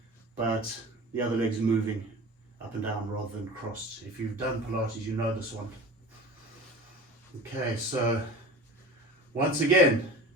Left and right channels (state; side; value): normal; both; correlation 0.36